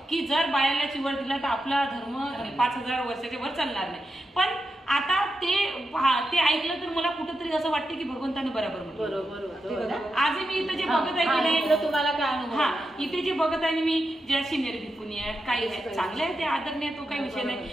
की जर बायाला चिवर दिला तर आपला धर्म 5000 वर्षाच्या वर चालणार नाही. पण आता ते ते ऐकलं तर मला कुठंतरी असं वाटतं की भगवंताने बरोबर म्हटलं. बरोबर. आजही मी इथं जे बघत आहे की नाही, इथलं तुम्हाला काय अनुभव हा आला? इथे जे बघत आहे मी ज्या सिनियर भिकुनी आहेत काही आहेत चांगले आहे, ते आदरणीय, तो काही विषय नाही.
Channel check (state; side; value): normal; both; correlation 0.87